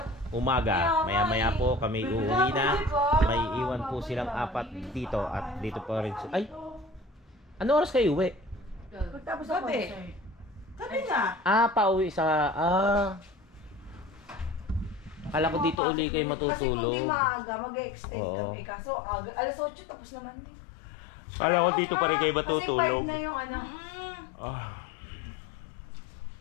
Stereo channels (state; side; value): drops out; right; at 15.8 s